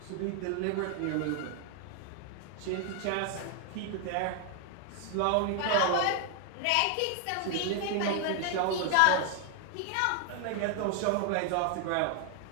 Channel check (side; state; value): both; different; correlation 0.00